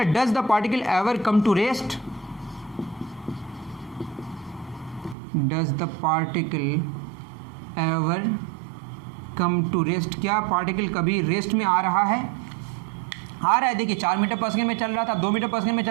does the particle ever come to rest, does the particle ever come to rest, क्या पार्टिकल कभी रेस्ट में आ रहा है, आ रहा है। देखिए 4 मीटर पर सेकंड में चल रहा था, 2 मीटर पर सेकंड में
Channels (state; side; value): drops out; left; at 5.2 s